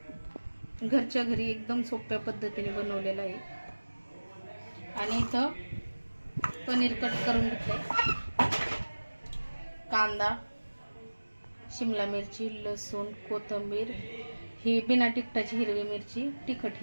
घरच्या घरी एकदम सोप्या पद्धतीने बनवलेलं आहे. आणि इथं पनीर कट करून घेतलंय, कांदा, शिमला मिरची, लसूण, कोथिंबीर, ही बिना तिखटाची हिरवी मिरची, तिखट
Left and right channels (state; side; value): inverted; both; correlation -1.00